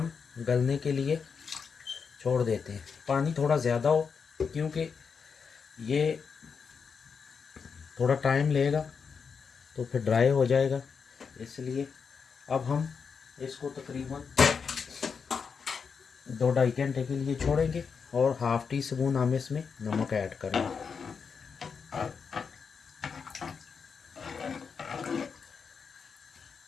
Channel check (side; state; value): right; quieter; 5.9 dB